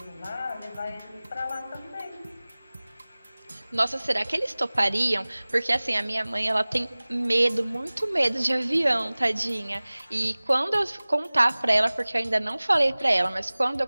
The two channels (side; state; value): both; inverted; correlation -0.99